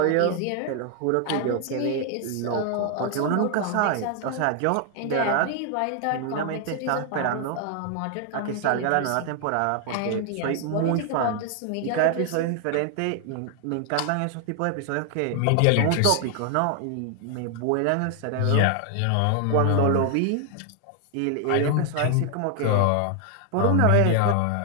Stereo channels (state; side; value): different; both; correlation 0.00